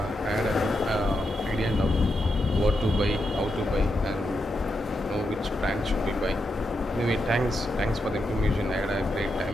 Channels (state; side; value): normal; both; correlation 0.84